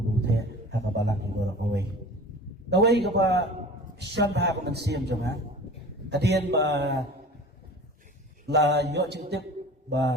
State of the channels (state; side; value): normal; both; correlation 0.40